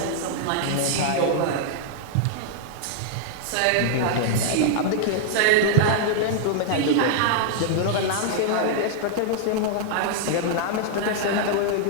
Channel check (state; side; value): different; both; correlation -0.01